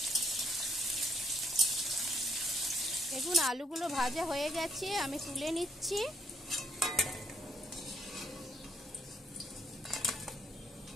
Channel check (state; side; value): normal; both; correlation 0.69